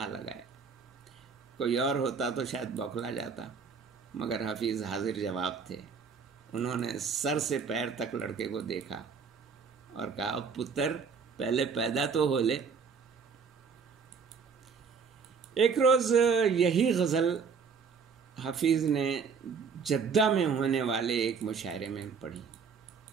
لگایا۔ کوئی اور ہوتا تو شاید بوکھلا جاتا، مگر حفیظ حاضر جواب تھے۔ انہوں نے سر سے پیر تک لڑکے کو دیکھا اور کہا، پتر پہلے پیدا تو ہو لے۔ ایک روز یہی غزل حفیظ نے جدہ میں ہونے والے ایک مشاعرے میں پڑھی۔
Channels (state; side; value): quieter; left; 5.7 dB